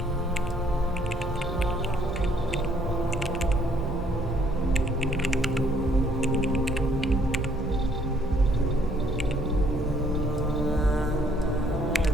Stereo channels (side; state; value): both; normal; correlation 0.64